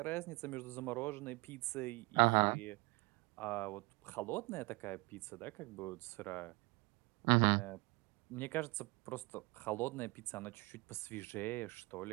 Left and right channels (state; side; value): quieter; left; 26.3 dB